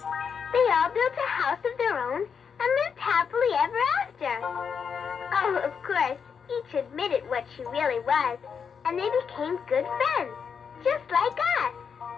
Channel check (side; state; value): right; quieter; 6.5 dB